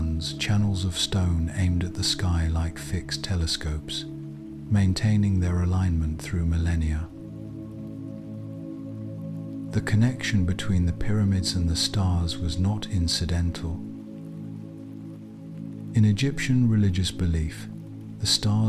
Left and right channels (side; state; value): both; identical; correlation 1.00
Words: channels of stone aimed at the sky like fixed telescopes, maintaining their alignment through millennia. The connection between the pyramids and the stars was not incidental. In Egyptian religious belief, the